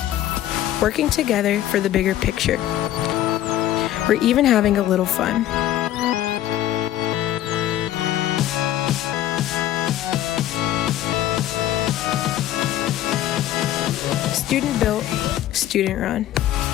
Working together for the bigger picture. We're even having a little fun. Student built, student run.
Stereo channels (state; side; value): quieter; right; 12.8 dB